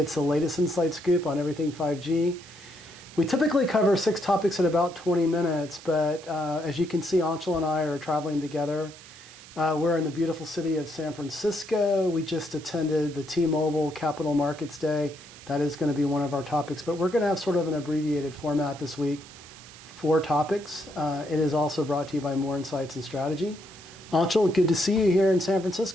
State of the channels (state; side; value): noise; right; hiss, 19 dB below the sound